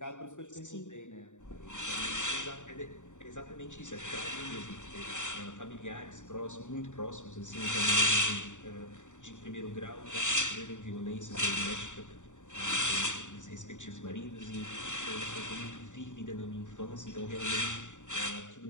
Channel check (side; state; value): right; late; 0.85 ms